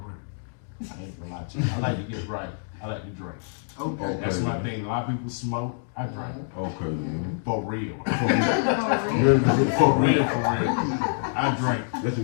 work. I ain't gonna lie to you. I like to get right. I like to drink. Okay. That's my thing. A lot of people smoke. I drink. Okay. For real. For real. I drink. That's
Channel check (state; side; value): silent; right; digital silence